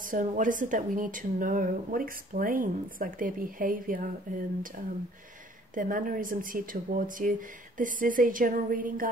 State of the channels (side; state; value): both; normal; correlation 0.56